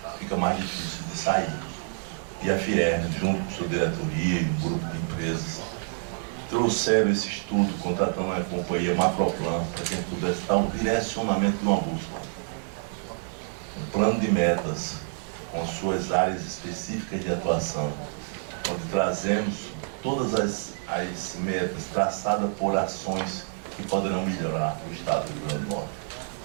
fica mais difícil de sair. E a Fierne, junto com sua diretoria e um grupo de empresas, trouxeram esse estudo, contratando a companhia Macroplan, para que a gente pudesse dar um direcionamento de uma bússola. Um plano de metas, com suas áreas específicas de atuação, onde trazemos todas as metas traçadas por ações que poderão melhorar o Estado do Rio Grande do Norte.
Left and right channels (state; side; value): silent; left; 58 dB below the other